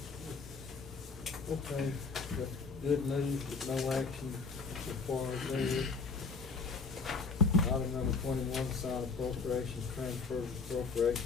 Okay, that's good news, but no action so far as there. Item number 21, sign appropriations, transfers,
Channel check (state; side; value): quieter; right; 4.5 dB